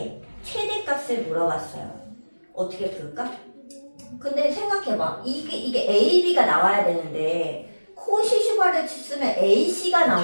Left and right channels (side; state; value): both; inverted; correlation -1.00